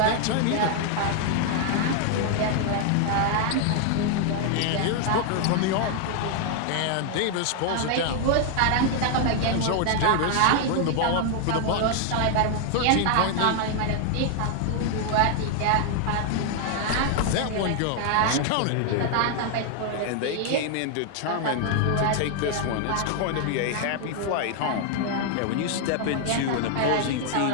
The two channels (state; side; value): different; both; correlation 0.00